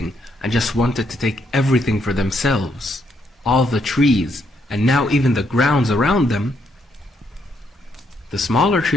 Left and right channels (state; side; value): normal; both; correlation 0.75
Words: and just wanted to take everything for themselves, all the trees, and now even the grounds around them, the smaller